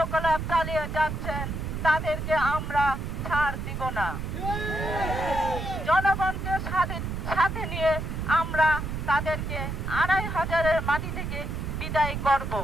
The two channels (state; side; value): noise; right; rumble, 4 dB below the sound